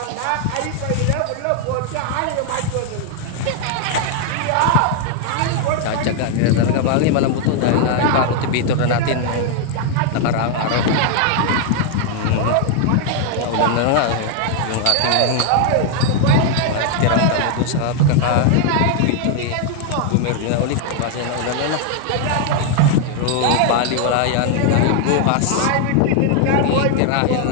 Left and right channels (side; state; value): both; different; correlation 0.00